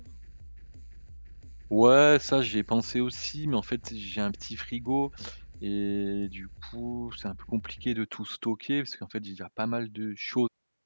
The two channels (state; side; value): inverted; both; correlation -1.00